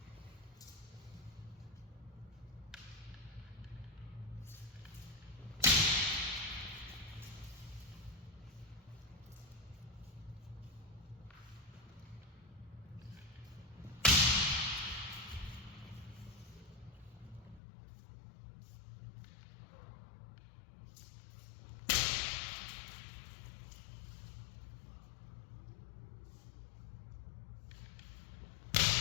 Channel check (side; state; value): right; drops out; at 17.6 s